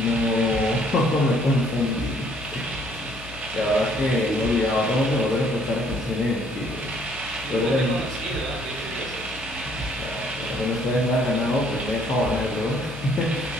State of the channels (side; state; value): left; noise; hum, 16 dB below the sound